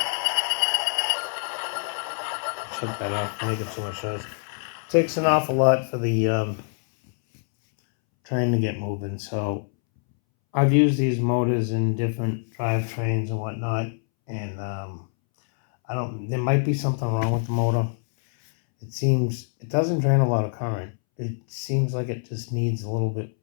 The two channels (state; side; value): silent; right; 62 dB below the other